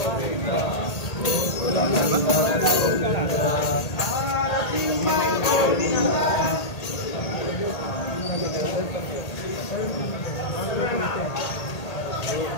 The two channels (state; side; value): late; right; 1.8 ms